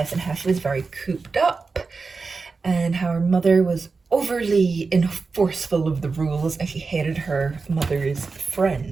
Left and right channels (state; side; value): quieter; left; 4.4 dB